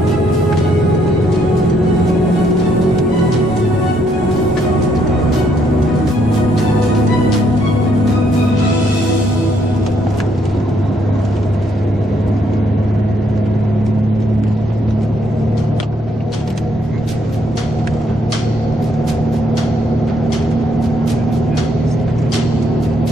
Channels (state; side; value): normal; both; correlation 0.72